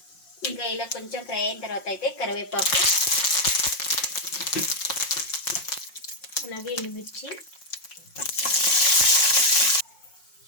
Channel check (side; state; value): right; late; 5.6 ms